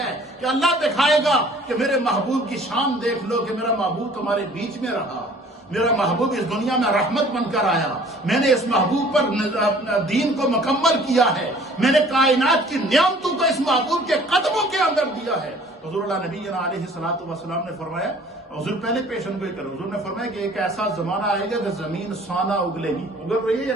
کہ اللہ دکھائے گا کہ میرے محبوب کی شان دیکھ لو کہ میرا محبوب تمہارے بیچ میں رہا, میرا محبوب اس دنیا میں رحمت بن کر آیا, میں نے اس محبوب پر دین کو مکمل کیا ہے, میں نے کائنات کی نعمتوں کو اس محبوب کے قدموں کے اندر دیا ہے. حضور اللہ نبی علیہ الصلوۃ والسلام نے فرمایا, حضور پہلے پیشن گوئی کرو, حضور نے فرمایا کہ ایک ایسا زمانہ آئے گا کہ زمین سونا اگلے گی. اگل رہی ہے یا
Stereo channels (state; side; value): normal; both; correlation 0.52